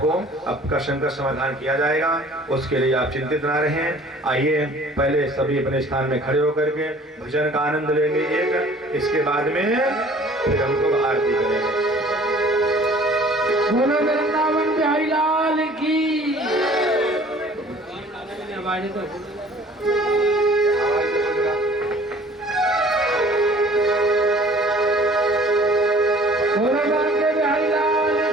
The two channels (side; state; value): both; normal; correlation 0.51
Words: आपका शंका समाधान किया जाएगा, उसके लिए आप चिंतित ना रहें। आइए पहले सभी अपने स्थान में खड़े होकर के भजन का आनंद लेंगे एक, इसके बाद में फिर हम लोग आरती करेंगे। बोलो वृंदावन बिहारी लाल की।